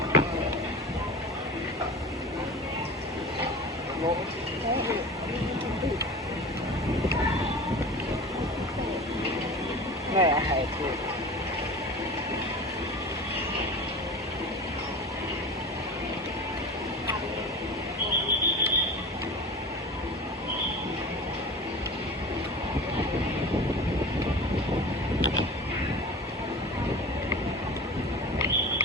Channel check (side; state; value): both; normal; correlation 0.34